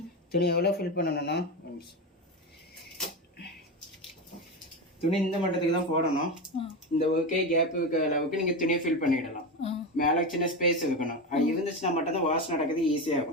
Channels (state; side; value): normal; both; correlation 0.18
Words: துணி எவ்வளோ ஃபில் பண்ணணும்னா துணி இந்த மட்டத்துக்கு தான் போடணும். இந்த ஓகே கேப் இருக்க அளவுக்கு நீங்கள் துணியை ஃபில் பண்ணிடலாம். மேலே சின்ன ஸ்பேஸ் இருக்கணும். அது இருந்துச்சுன்னா மட்டும் தான் வாஷ் நடக்கிறது ஈஸியாக